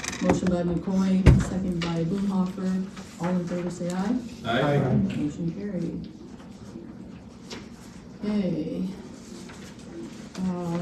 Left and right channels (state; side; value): identical; both; correlation 1.00